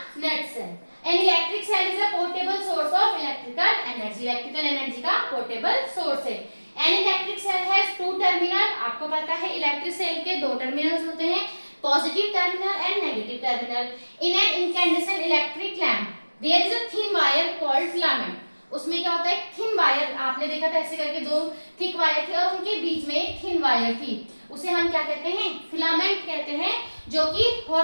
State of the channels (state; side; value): inverted; both; correlation -1.00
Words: nutshell. An electric cell is a portable source of electrical energy. Electrical energy का पोर्टेबल सोर्स है। An electric cell has two terminal. आपको पता है इलेक्ट्रिक सेल के दो टर्मिनल्स होते हैं, positive terminal and negative terminal. In an incandescent electric lamp, there is a thin wire called filament. उसमें क्या होता है, थिन वायर, आपने देखा था ऐसे करके दो थिक वायर थे और उनके बीच में एक थिन वायर थी, उसे हम क्या कहते हैं, फिलामेंट कहते हैं। जो कि